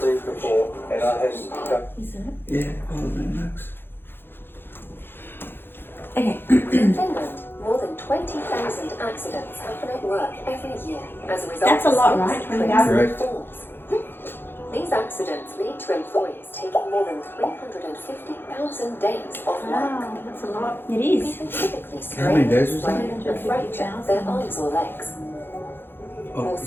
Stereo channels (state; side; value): late; right; 0.10 ms